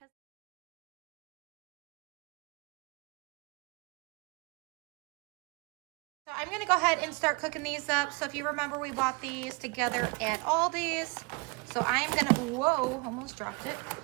so I'm gonna go ahead and start cooking these up. So if you remember, we bought these together at Aldi's. So I'm gonna, whoa, almost dropped it.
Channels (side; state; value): left; quieter; 27.8 dB